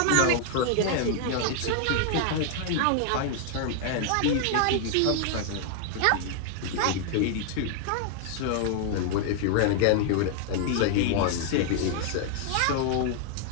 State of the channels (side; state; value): both; different; correlation 0.00